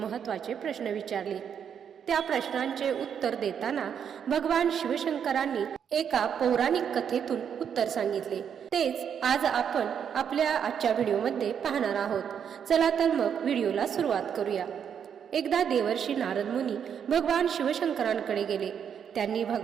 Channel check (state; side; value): quieter; left; 8.0 dB